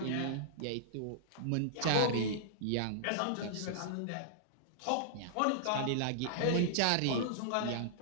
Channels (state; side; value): different; both; correlation -0.01